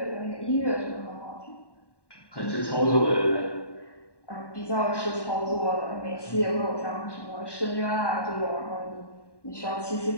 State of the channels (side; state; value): right; late; 1.1 ms